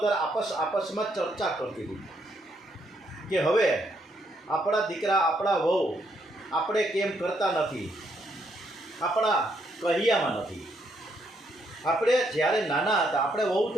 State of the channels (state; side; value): normal; both; correlation 0.74